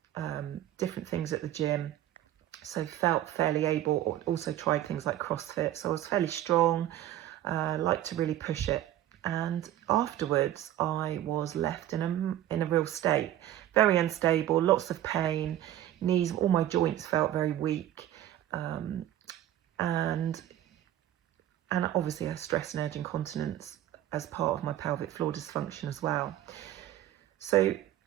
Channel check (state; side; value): quieter; left; 12.7 dB